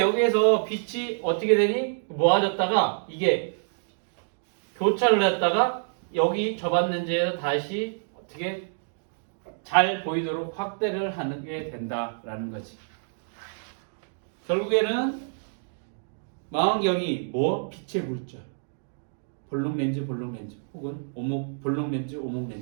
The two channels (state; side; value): silent; left; digital silence